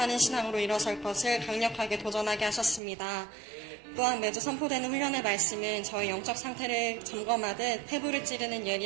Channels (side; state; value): left; drops out; at 2.8 s